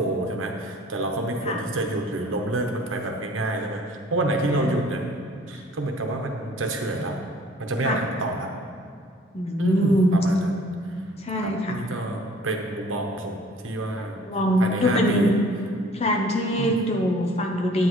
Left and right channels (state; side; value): normal; both; correlation 0.52